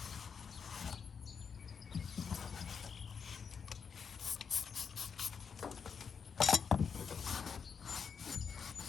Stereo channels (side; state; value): right; quieter; 6.3 dB